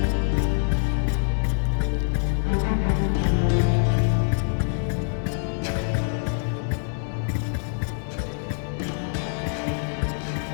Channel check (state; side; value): silent; right; 62 dB below the other